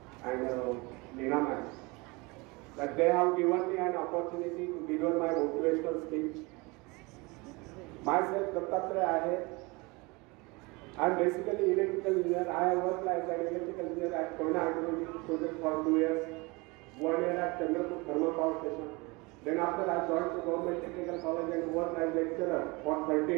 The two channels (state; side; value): quieter; left; 25.9 dB